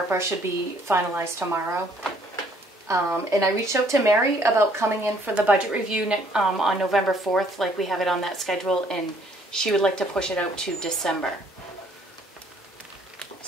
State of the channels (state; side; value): normal; both; correlation 0.62